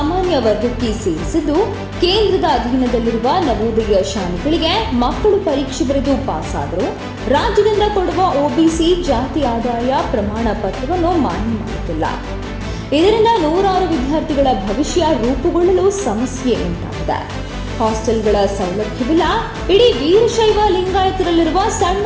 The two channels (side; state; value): both; identical; correlation 1.00